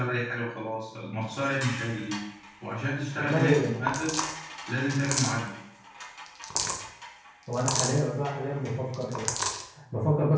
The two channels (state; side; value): identical; both; correlation 1.00